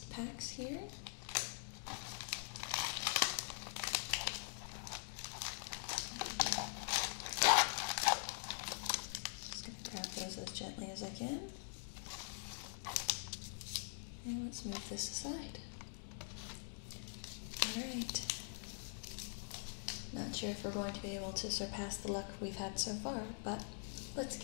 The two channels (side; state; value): right; silent; digital silence